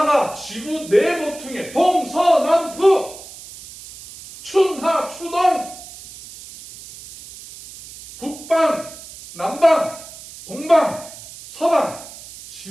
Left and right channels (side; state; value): right; noise; hiss, 16 dB below the sound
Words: 지구 네 모퉁이에 동서남북 춘하 추동 북방 남방 동방 서방